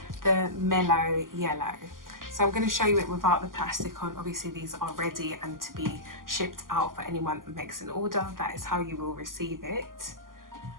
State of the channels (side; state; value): left; late; 0.91 ms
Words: the mellow yellow. So I'm going to show you it without the plastic on. Obviously these are ready and to be shipped out for anyone that makes an order. That is how you will receive it.